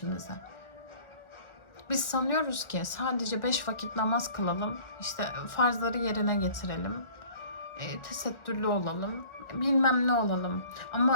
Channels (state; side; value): late; right; 1.4 ms